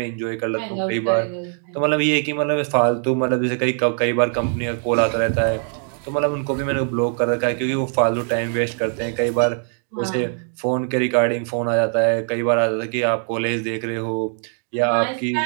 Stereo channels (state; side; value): silent; left; 61 dB below the other